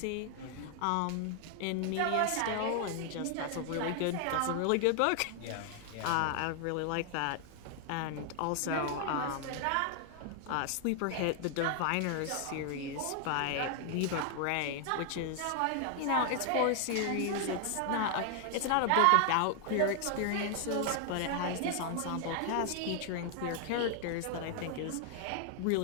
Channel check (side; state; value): both; different; correlation 0.00